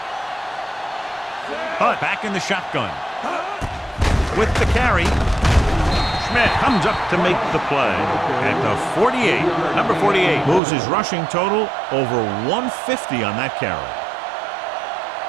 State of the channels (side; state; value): left; drops out; at 10.6 s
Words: Hunt back in the shotgun. With the carry. Schmidt comes up to make the play at the 48. Number 48 moves his rushing total over 150 on that carry.